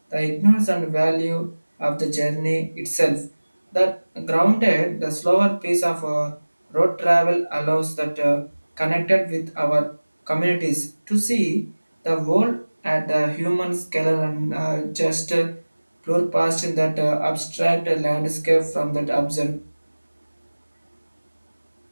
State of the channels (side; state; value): both; inverted; correlation -1.00